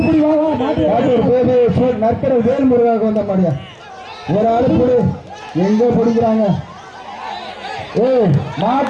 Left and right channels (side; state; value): both; identical; correlation 1.00